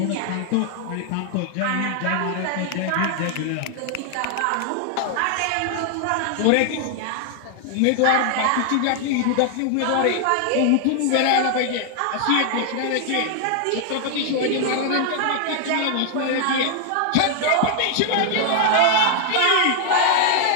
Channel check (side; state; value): both; different; correlation 0.00